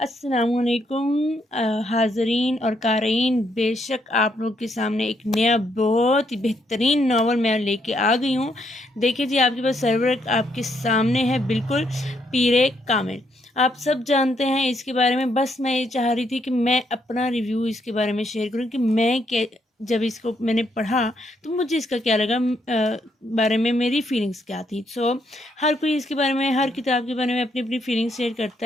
हाज़रीन और क़ारीन, बेशक आप लोग के सामने एक नया बहुत ही बेहतरीन नावल मैं लेके आ गई हूँ। देखिए जी, आपके पास सर्वर आपके सामने है, बिल्कुल पीरे कामिल। आप सब जानते हैं इसके बारे में, बस मैं ये चाह रही थी कि मैं अपना रिव्यू इसके बारे में शेयर करूँ कि मैं जब इसको मैंने पढ़ा तो मुझे इसका क्या लगा, बारे में मेरी फीलिंग्स क्या थी। हर कोई इसके बारे में, हर किताब के बारे में अपनी अपनी फीलिंग्स शेयर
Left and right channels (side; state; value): both; normal; correlation 0.74